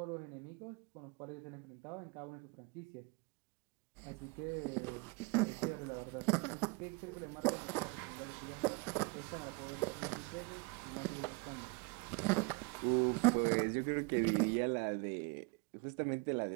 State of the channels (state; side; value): quieter; left; 28.5 dB